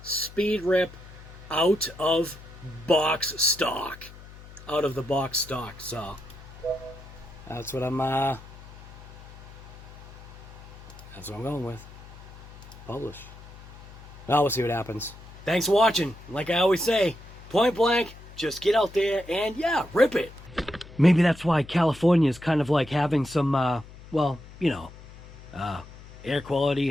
speed rip out of box stock. Out of the box stock. So that's what I'm That's what I'm going with. Publish. Now we'll see what happens. Thanks for watching. Like I always say, point blank, just get out there and yeah, rip it. Maybe that's why California is kind of like having some, well, you know, air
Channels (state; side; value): noise; left; hum, 18 dB below the sound